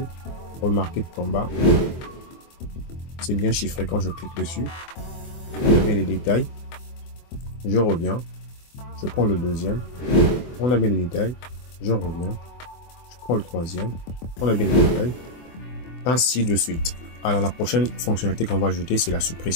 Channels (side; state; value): right; late; 24 ms